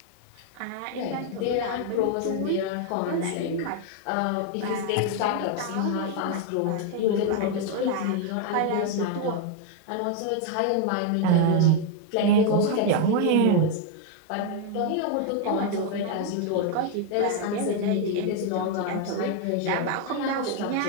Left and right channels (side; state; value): both; different; correlation 0.01